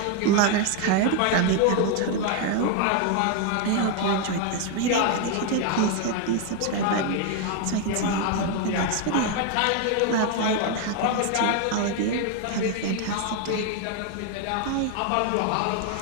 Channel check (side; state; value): both; different; correlation 0.01